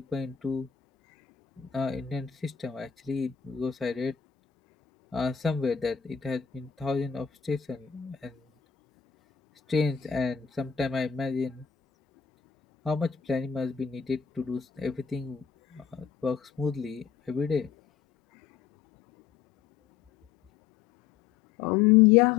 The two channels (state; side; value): quieter; right; 7.6 dB